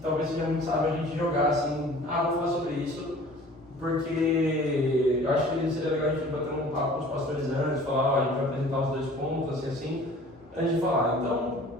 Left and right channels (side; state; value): both; normal; correlation 0.47